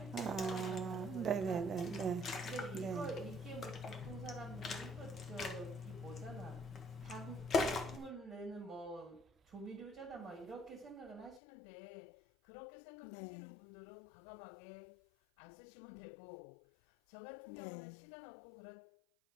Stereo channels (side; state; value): right; drops out; at 11.4 s